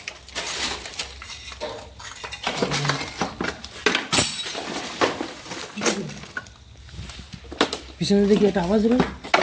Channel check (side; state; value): both; identical; correlation 1.00